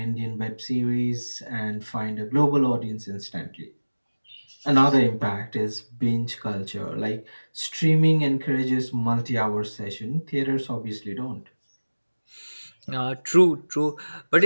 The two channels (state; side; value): inverted; both; correlation -1.00